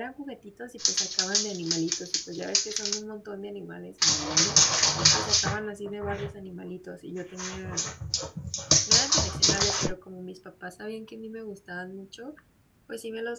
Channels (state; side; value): identical; both; correlation 1.00